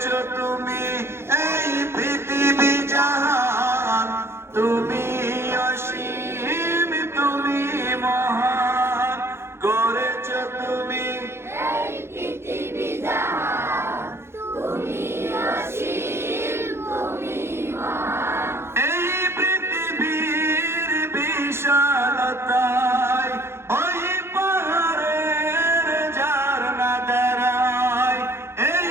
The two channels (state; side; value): late; left; 0.12 ms